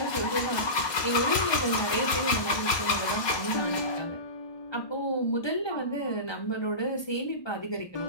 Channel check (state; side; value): late; right; 1.2 ms